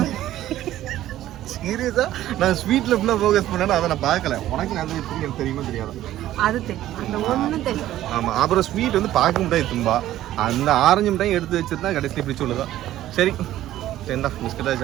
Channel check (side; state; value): left; quieter; 13.6 dB